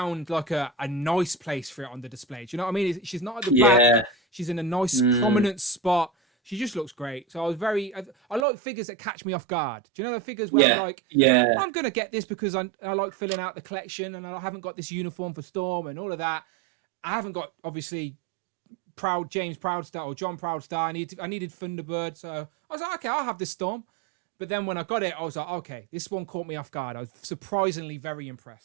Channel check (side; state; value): left; drops out; at 8.5 s